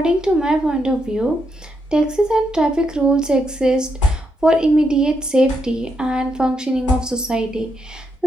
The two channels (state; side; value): normal; both; correlation 0.80